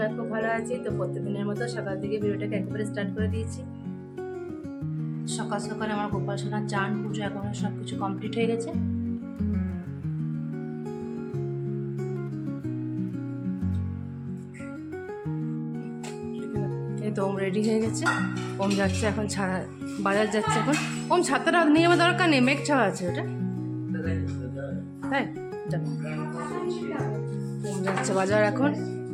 খুব ভালো আছি। তো প্রত্যেকদিনের মতো সকাল থেকে ভিডিওটাকে একেবারে স্টার্ট করে দিয়েছি। সকাল সকাল আমার গোপাল সোনার চান পুজো এখন সব কিছু কমপ্লিট হয়ে গেছে। এই তো ওম রেডি হয়ে গেছে, ওম যাচ্ছে এখন বাজার যাচ্ছে এখন। ওম ছাতাটা নিয়ে আমার দরকার নেই, মেঘ ছাওয়া আছে ওটা, তাই ওম যাচ্ছে বাজার এখন,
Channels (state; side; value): identical; both; correlation 1.00